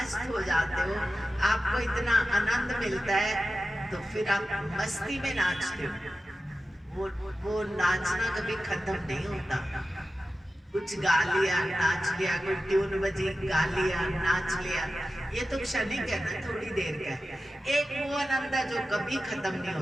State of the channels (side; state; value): both; normal; correlation 0.93